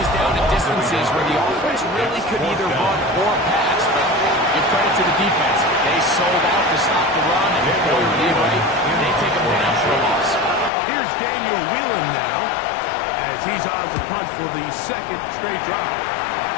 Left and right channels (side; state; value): right; drops out; at 10.7 s